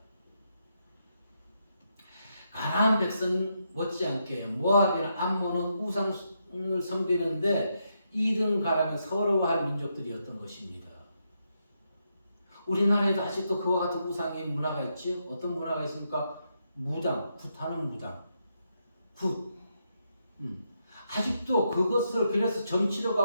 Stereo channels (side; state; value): both; inverted; correlation -0.81